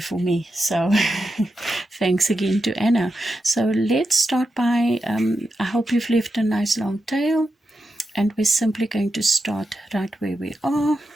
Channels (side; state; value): both; normal; correlation 0.88